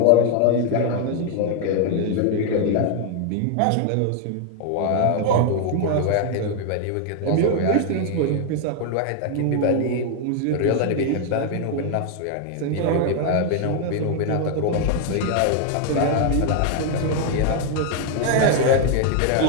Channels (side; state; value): both; different; correlation 0.00